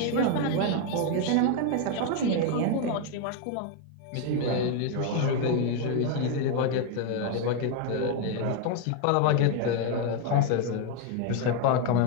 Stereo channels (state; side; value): different; both; correlation 0.01